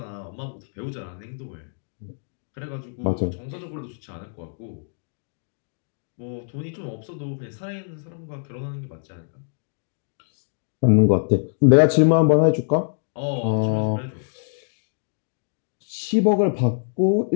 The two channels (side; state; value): right; silent; digital silence